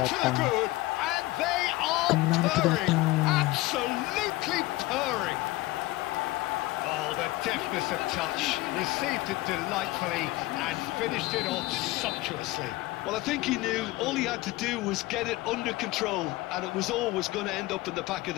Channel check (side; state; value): right; quieter; 19.0 dB